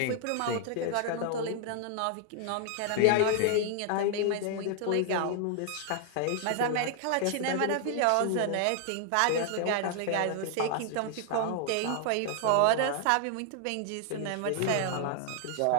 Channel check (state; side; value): different; both; correlation 0.00